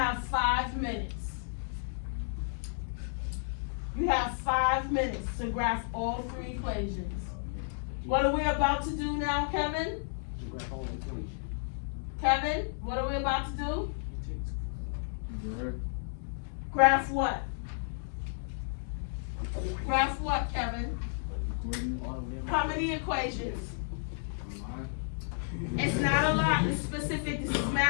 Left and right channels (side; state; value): right; silent; digital silence